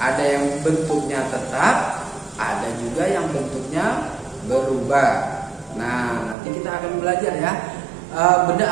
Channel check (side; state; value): left; drops out; at 6.4 s